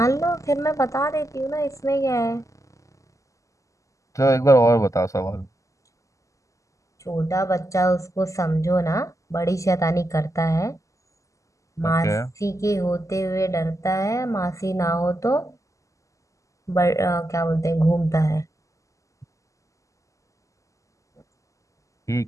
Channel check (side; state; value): right; late; 0.16 ms